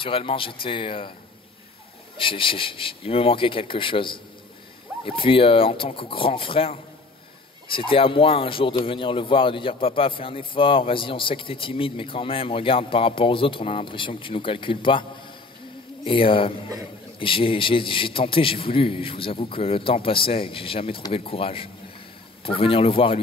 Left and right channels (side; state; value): right; quieter; 3.5 dB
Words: j'étais... il me manquait quelque chose. Et puis en tant que grand frère, c'était à moi un jour de venir le voir et de dire papa, fais un effort, vas-y, on sait que t'es timide, mais quand même, regarde, par rapport aux autres, on a l'impression que tu nous calcules pas. Et j'ai tenté, j'ai voulu, je vous avoue que le temps passait et que j'ai jamais trouvé le courage pour venir le voir et